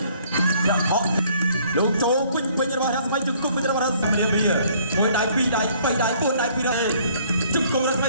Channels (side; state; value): both; inverted; correlation -0.60